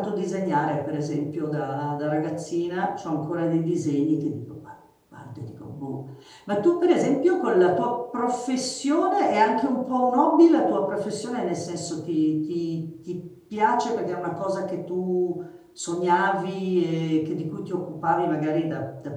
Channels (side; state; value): both; identical; correlation 1.00